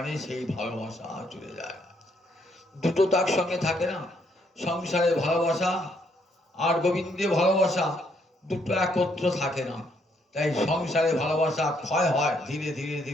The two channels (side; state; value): both; normal; correlation 0.72